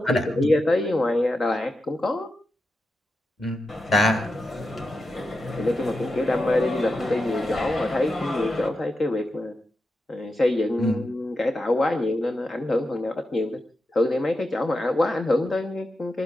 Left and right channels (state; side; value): normal; both; correlation 0.89